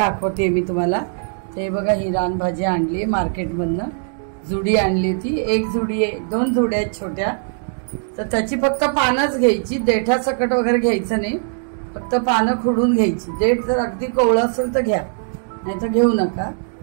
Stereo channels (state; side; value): silent; left; 62 dB below the other